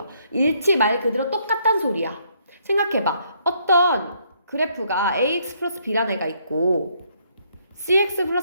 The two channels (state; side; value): inverted; both; correlation -0.70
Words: 일치 말 그대로 똑같단 소리야. 생각해봐. 어떤 그래프가 ax 플러스 b라는 애가 있고 cx